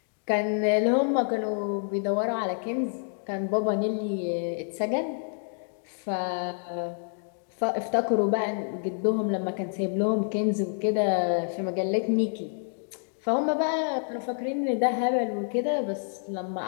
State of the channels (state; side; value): silent; right; digital silence